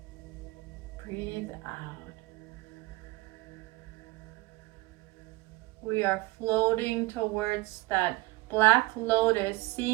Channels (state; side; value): quieter; left; 20.6 dB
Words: Breathe out. We are floating towards that black lotus,